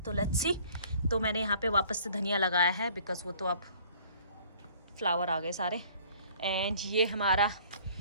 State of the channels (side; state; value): both; inverted; correlation -0.54